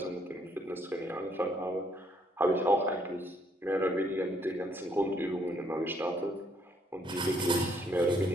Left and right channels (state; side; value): normal; both; correlation 0.69